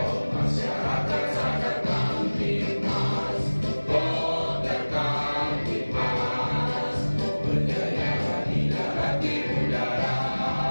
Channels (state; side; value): inverted; both; correlation -1.00